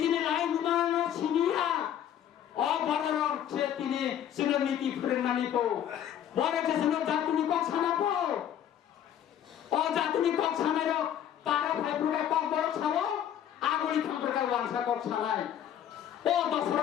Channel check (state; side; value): quieter; right; 10.2 dB